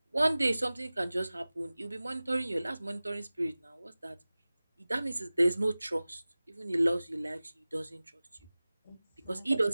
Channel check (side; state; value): both; inverted; correlation -0.98